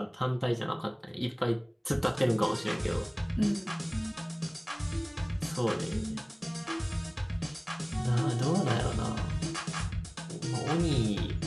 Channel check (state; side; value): identical; both; correlation 1.00